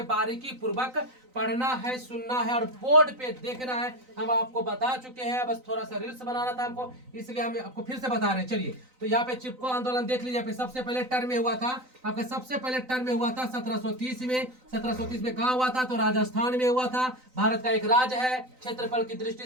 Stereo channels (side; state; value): left; late; 3.9 ms